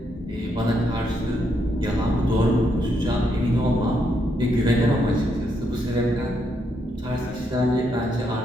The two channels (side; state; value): both; normal; correlation 0.77